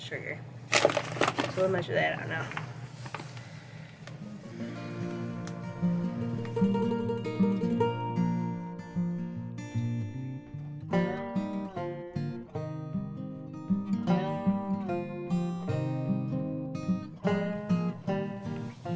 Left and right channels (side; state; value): both; identical; correlation 1.00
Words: sugar. So we'll measure that out now.